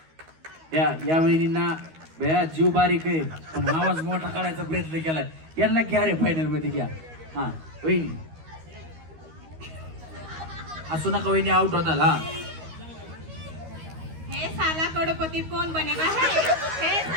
या वहिनींना बया जीव बारीक आहे, पण आवाज मोठा काढायचा प्रयत्न केलाय. यांना घ्या रे फायनल मध्ये घ्या. हा वहिनी, असू नका वहिनी, आउट होताल. हा, हे साला करोड़पति कौन बनेगा है, हे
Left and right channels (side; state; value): left; late; 13 ms